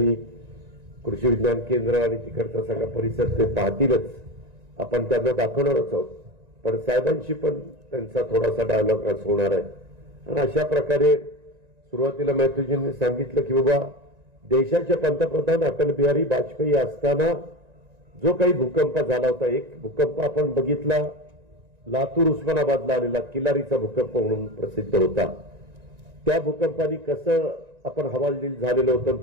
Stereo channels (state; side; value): late; left; 1.9 ms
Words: कृषी विज्ञान केंद्र आणि तिकडचा सगळा परिसर ते पाहतीलच, आपण त्यांना दाखवणारच आहोत. पण साहेबांशी पण त्यांचा थोडासा डायलॉग आज होणार आहे. आणि अशा प्रकारे सुरुवातीला मॅथ्यूजींनी सांगितलं की बाबा देशाचे पंतप्रधान अटल बिहारी वाजपेयी असताना जो काही भूकंप झाला होता, एक भूकंप आपण बघितला लातूर उस्मानाबादला आलेला किल्लारीचा भूकंप म्हणून प्रसिद्ध होता. त्या भूकंपाने कसं आपण हवालदिल झालेलं होतं,